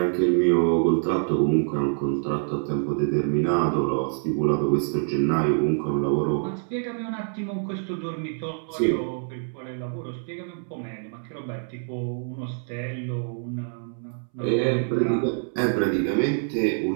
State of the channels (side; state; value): left; silent; 61 dB below the other